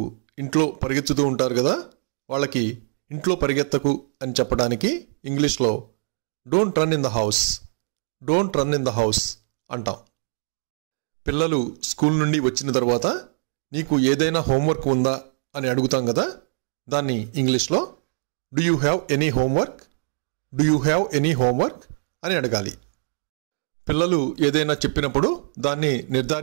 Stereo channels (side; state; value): left; silent; digital silence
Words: ఇంట్లో పరిగెత్తుతూ ఉంటారు కదా, వాళ్ళకి ఇంట్లో పరిగెత్తకు అని చెప్పడానికి ఇంగ్లీష్లో don't run in the house. Don't run in the house అంటాం. పిల్లలు స్కూల్ నుండి వచ్చిన తర్వాత నీకు ఏదైనా హోంవర్క్ ఉందా అని అడుగుతాం కదా, దాన్ని ఇంగ్లీష్లో do you have any homework? Do you have any homework అని అడగాలి. పిల్లలు ఏదైనా చెప్పినప్పుడు దాన్ని